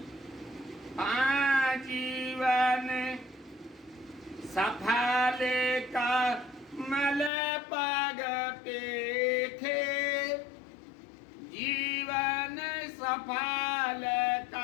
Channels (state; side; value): drops out; right; at 7.3 s